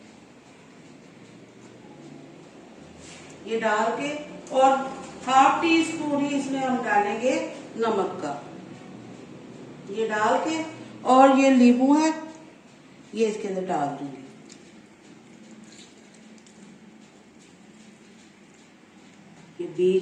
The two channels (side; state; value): both; identical; correlation 1.00